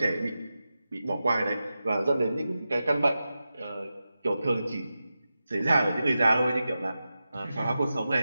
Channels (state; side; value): inverted; both; correlation -0.92